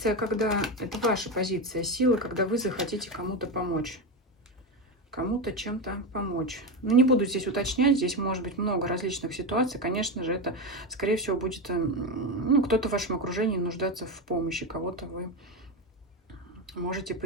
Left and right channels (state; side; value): normal; both; correlation 0.15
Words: когда... Это ваша позиция силы, когда вы захотите кому-то помочь. Кому-то чем-то помочь. Ну, не буду здесь уточнять, здесь может быть много различных ситуаций. Конечно же, это, скорее всего, будет, ну, кто-то в вашем окружении нуждаться в помощи, кого-то вы можете